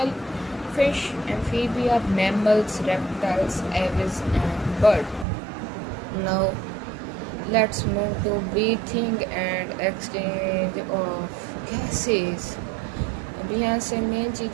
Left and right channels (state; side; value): drops out; left; at 5.2 s